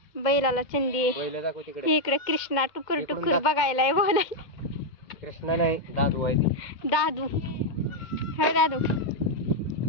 बैलाला चंदी. बैल दाखव तिकडे. इकडे कृष्णा टुकर टुकर बघायला बोलाय. कृष्णा नाही दादू आहे ती. दादू. हे दादू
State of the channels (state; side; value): late; right; 2.1 ms